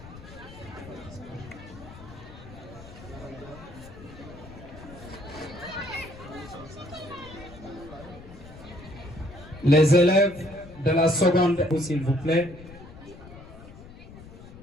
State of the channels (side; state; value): left; noise; rumble, 17 dB below the sound